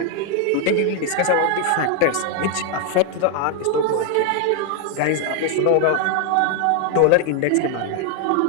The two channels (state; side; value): different; both; correlation 0.00